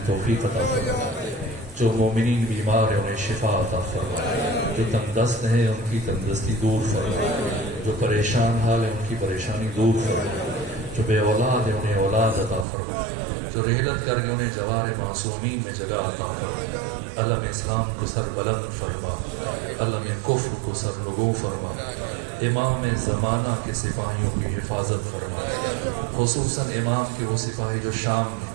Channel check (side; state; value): left; drops out; at 12.7 s